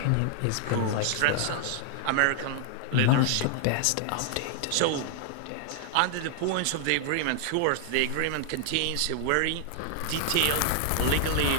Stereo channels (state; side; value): different; both; correlation 0.00